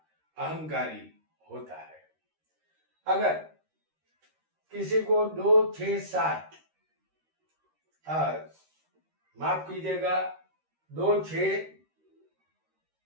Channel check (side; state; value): left; late; 13 ms